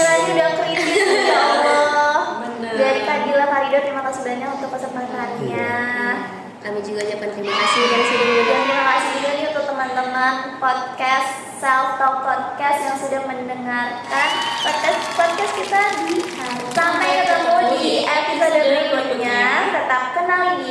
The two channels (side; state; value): both; identical; correlation 1.00